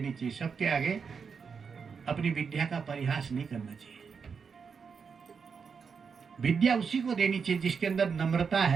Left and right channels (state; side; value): quieter; left; 5.9 dB